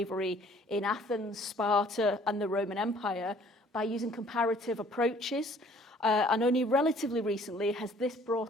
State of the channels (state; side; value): normal; both; correlation 0.57